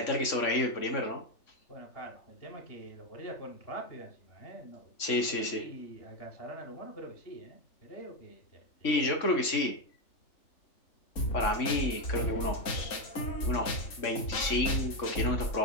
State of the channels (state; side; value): late; right; 3.6 ms